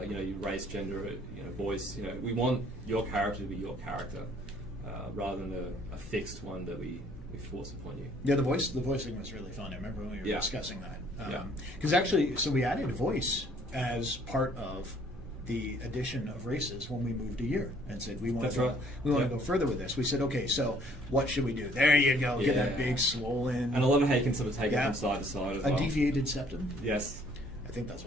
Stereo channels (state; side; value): normal; both; correlation 0.60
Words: Your race, gender, voice. We want your character to be your character, rather than a fixed one that we force upon you. Yeah, the voicing was really fun. I remember when we were discussing that. Because actually, so we added voice as part of the addition of races when we moved a year and said we want to go further with this. We said, okay, so what should we do? There you go. Get that big swollen. And I love how you can sort of take it from side to side as well. A deviated septum. Yes. I think that's